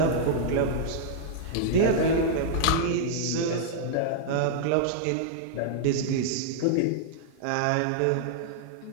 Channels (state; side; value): different; both; correlation -0.01